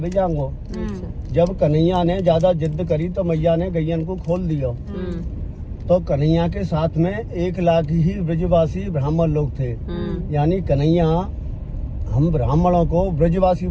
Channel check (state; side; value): identical; both; correlation 1.00